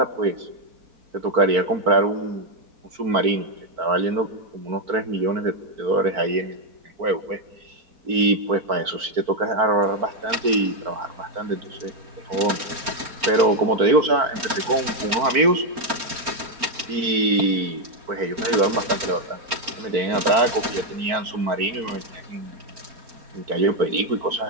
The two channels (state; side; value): late; left; 4.5 ms